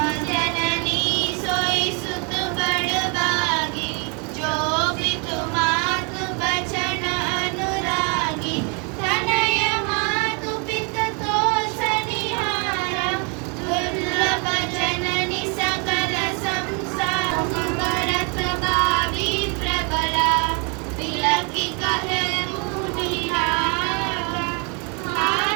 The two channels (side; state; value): left; quieter; 34.5 dB